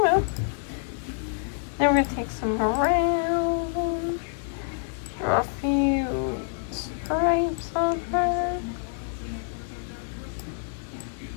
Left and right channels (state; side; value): silent; right; 60 dB below the other